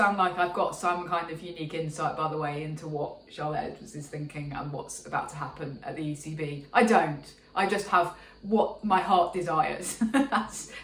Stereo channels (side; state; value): both; identical; correlation 1.00